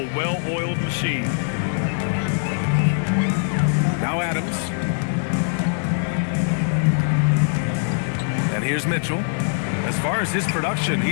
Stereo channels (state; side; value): silent; right; 64 dB below the other